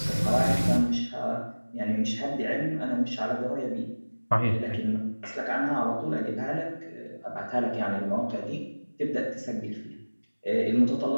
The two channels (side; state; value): both; inverted; correlation -1.00